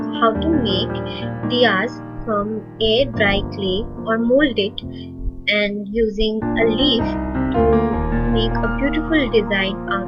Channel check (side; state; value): both; identical; correlation 1.00